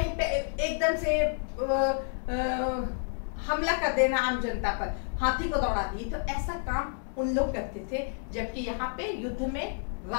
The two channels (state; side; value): silent; right; 58 dB below the other